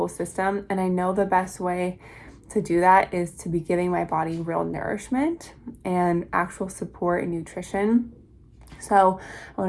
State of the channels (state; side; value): identical; both; correlation 1.00